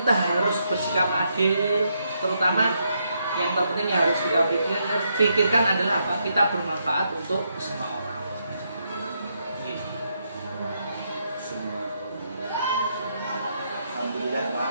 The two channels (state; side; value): inverted; both; correlation -0.78